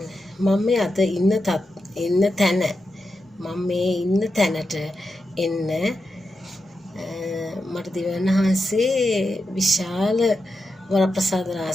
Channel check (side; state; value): both; normal; correlation 0.88